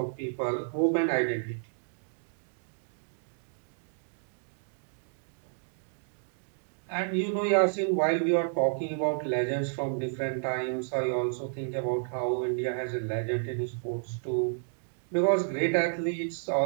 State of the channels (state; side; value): silent; left; digital silence